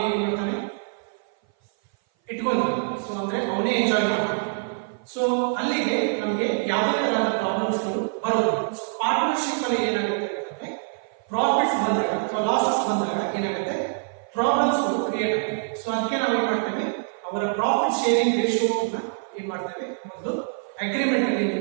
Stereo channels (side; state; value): left; silent; 57 dB below the other